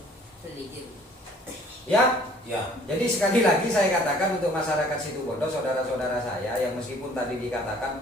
Sedikit. Ya, Ya. jadi sekali lagi saya katakan untuk masyarakat Situbondo, saudara-saudara saya yang meskipun tadi dikatakan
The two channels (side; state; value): both; normal; correlation 0.55